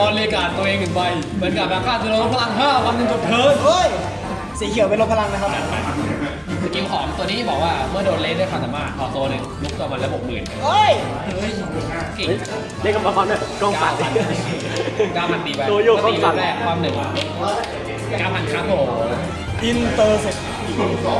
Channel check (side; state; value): both; identical; correlation 1.00